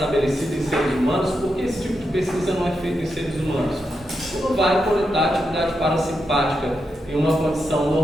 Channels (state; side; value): normal; both; correlation 0.85